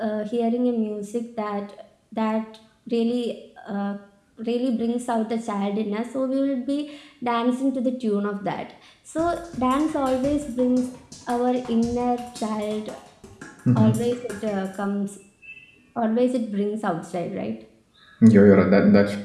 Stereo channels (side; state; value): both; identical; correlation 1.00